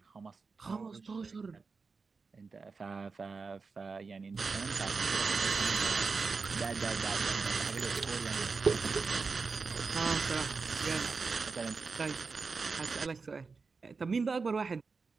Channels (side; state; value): left; quieter; 4.6 dB